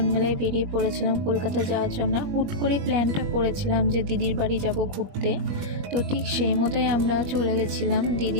মিলে বেরিয়ে পড়েছিলাম কলকাতা যাওয়ার জন্য। হুট করে প্ল্যানটা করেছিলাম যে দিদির বাড়ি যাব ঘুরতে। তো ঠিক সেই মতোই আমরা চলে গেছিলাম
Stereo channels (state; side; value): late; left; 21 ms